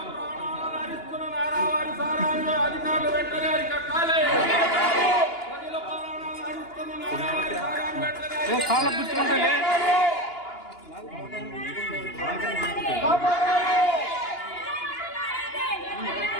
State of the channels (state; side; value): late; right; 2.9 ms